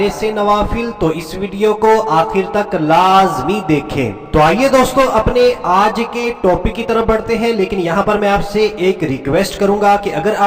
سے نوافل تو اس ویڈیو کو آخر تک لازمی دیکھیں۔ تو آئیے دوستو اپنے آج کے ٹاپک کی طرف بڑھتے ہیں، لیکن یہاں پر میں آپ سے ایک ریکویسٹ کروں گا کہ اگر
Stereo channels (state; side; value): identical; both; correlation 1.00